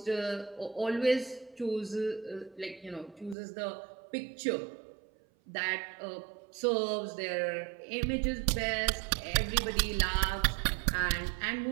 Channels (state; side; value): drops out; left; at 3.4 s